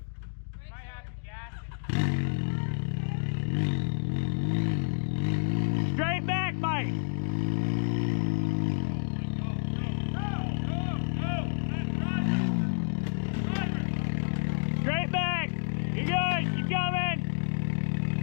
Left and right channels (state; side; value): silent; right; digital silence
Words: Straight back, Mike. Straight back. You're good. Keep coming.